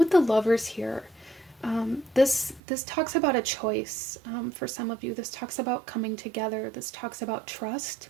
the Lovers here, this talks about a choice. For some of you, this talks about coming together. This talks about trust.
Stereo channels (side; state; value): left; drops out; at 2.6 s